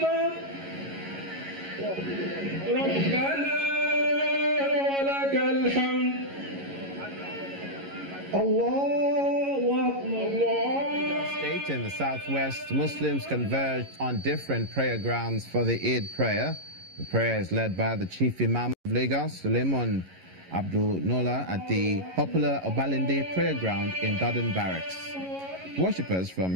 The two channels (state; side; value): late; left; 11 ms